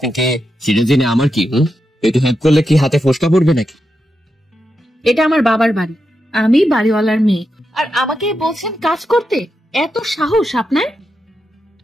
কে সেটা জেনে আমার কি? একটু হেল্প করলে কি হাতে ফোসকা পড়বে নাকি? এটা আমার বাবার বাড়ি, আমি বাড়িওয়ালার মেয়ে, আর আমাকে বলছেন কাজ করতে? এত সাহস আপনার?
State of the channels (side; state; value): both; normal; correlation 0.87